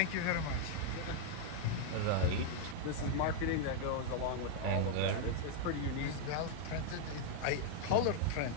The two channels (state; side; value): different; both; correlation 0.00